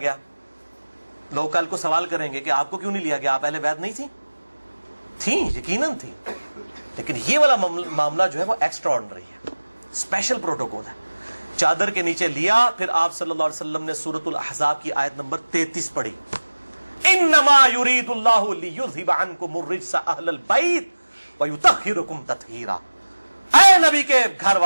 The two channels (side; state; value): both; inverted; correlation -1.00